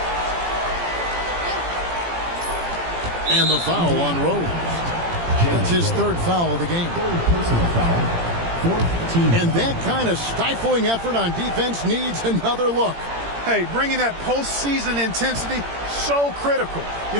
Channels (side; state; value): left; late; 17 ms